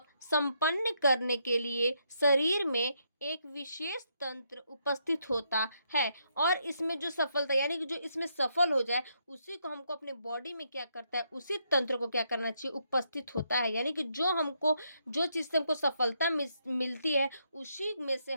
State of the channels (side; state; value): both; inverted; correlation -0.77